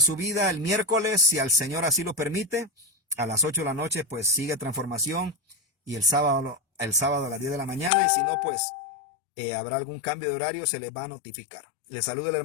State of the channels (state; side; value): drops out; right; at 7.9 s